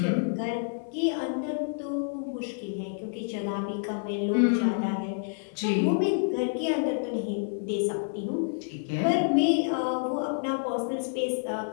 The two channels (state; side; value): silent; right; digital silence